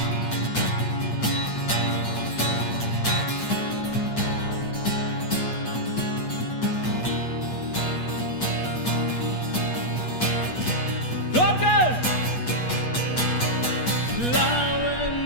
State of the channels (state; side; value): late; right; 8.2 ms